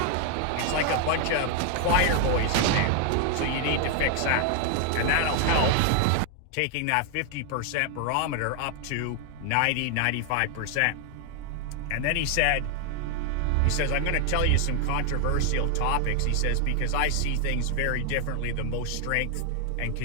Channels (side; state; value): both; different; correlation 0.00